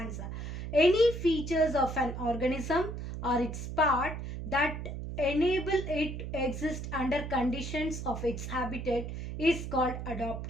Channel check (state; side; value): noise; right; hum, 6 dB below the sound